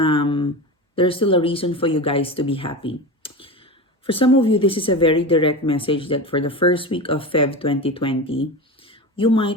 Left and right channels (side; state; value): both; normal; correlation 0.25